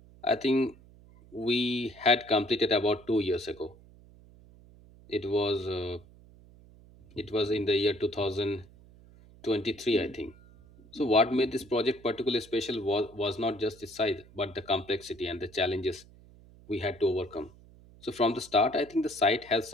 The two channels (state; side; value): noise; right; hum, 24 dB below the sound